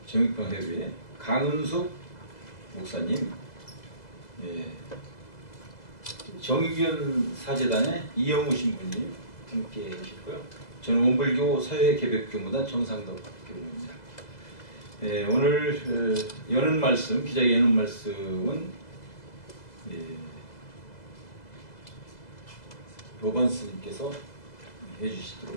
정의평화회회 강은숙 목사님, 정의견 사재단의 이영우 신부님 함께 해주시고요. 저는 원불교 사회개벽교무단 정상덕 교무입니다. 오늘 여는 말씀, 기자의 여는 말씀은 법안 스님께서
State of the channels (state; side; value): late; right; 2.0 ms